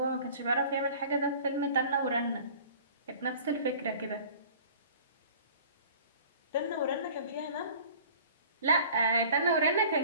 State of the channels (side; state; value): both; inverted; correlation -0.46